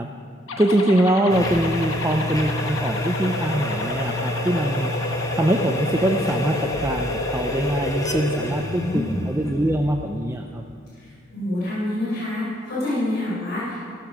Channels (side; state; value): both; normal; correlation 0.68